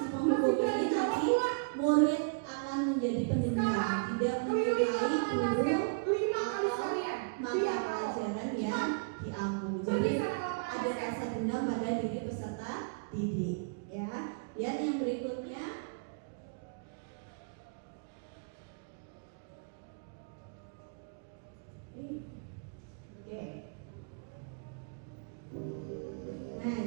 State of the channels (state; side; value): quieter; left; 37.7 dB